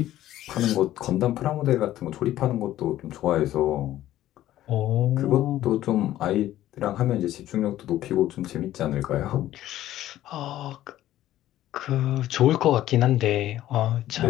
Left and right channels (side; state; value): right; quieter; 13.7 dB